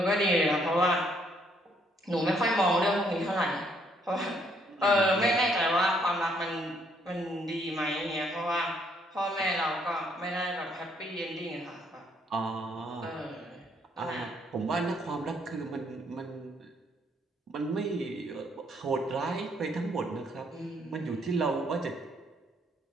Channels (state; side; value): normal; both; correlation 0.68